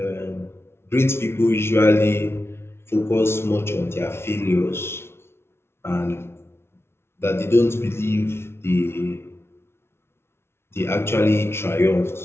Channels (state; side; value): late; right; 0.12 ms